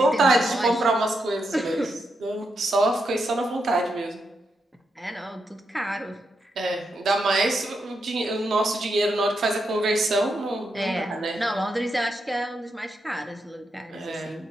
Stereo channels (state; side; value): normal; both; correlation 0.83